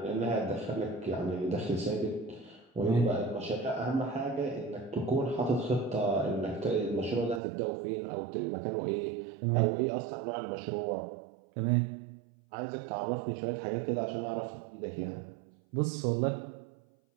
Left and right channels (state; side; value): drops out; left; at 7.4 s